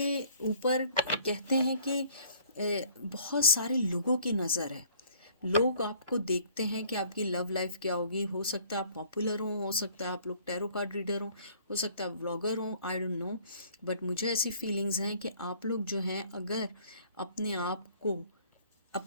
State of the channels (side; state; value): both; inverted; correlation -0.57